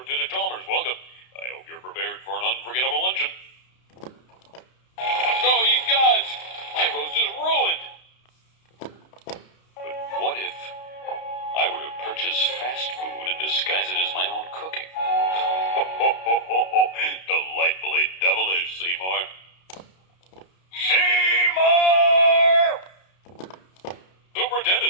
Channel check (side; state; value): right; late; 32 ms